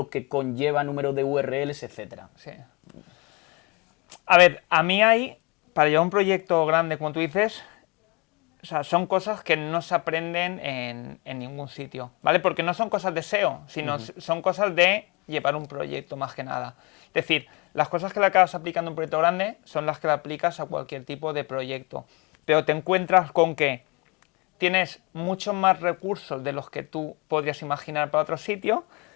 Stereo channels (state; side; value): quieter; right; 27.8 dB